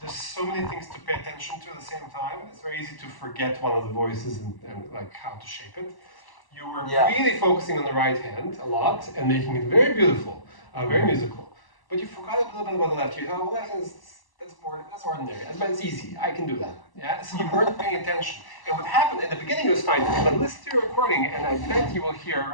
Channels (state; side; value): late; right; 1.0 ms